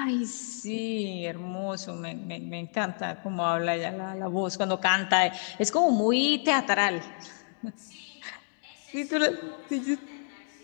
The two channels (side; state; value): right; silent; digital silence